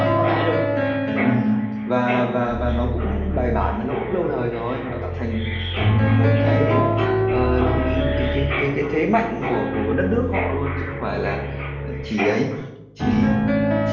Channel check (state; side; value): identical; both; correlation 1.00